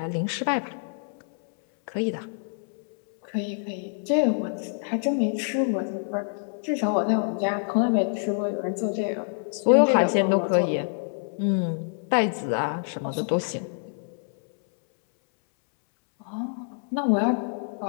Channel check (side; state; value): right; silent; 61 dB below the other